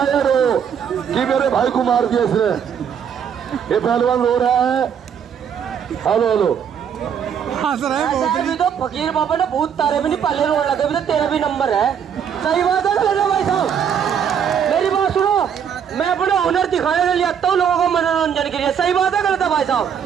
है रो कि मेरे भाई को मार दिया इसने, ये पहलवान रो रहा है। हेलो हेलो ऐसा अभी तो फकीर बाबा ने बहुत तारे भी नहीं पहले रोड लगे भी तो तेरा भी नंबर है। सही बात है ना भाई साहब, मेरी बात सुनो, मैं अपना हुनर दिखाने के लिए आता हूँ लोगों को मनोरंजन के लिए। सही बात है गलत है भाई साहब?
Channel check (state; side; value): quieter; left; 8.0 dB